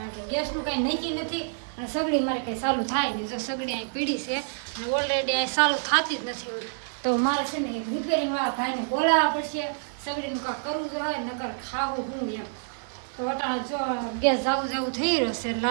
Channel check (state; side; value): silent; left; 60 dB below the other